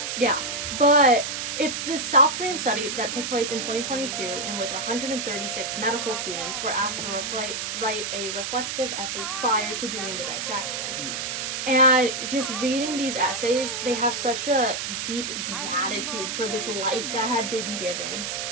Yeah, but it's this South Korean study that took place in 2022 in which 136 medical students were asked to write a reflective essay prior to doing the dissection. And just reading these essays, they have such a deep gratitude for this life that had been given.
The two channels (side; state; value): right; noise; hiss, 3 dB below the sound